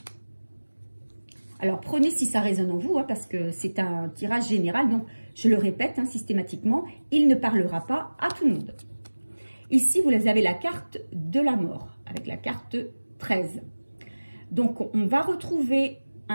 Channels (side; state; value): both; inverted; correlation -1.00